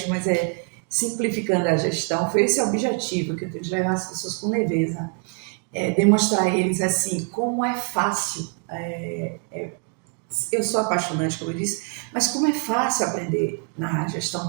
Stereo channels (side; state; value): left; quieter; 38.7 dB